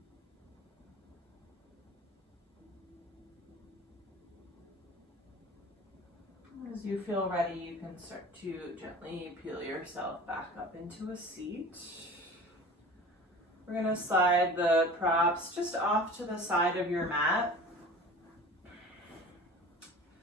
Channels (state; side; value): normal; both; correlation 0.39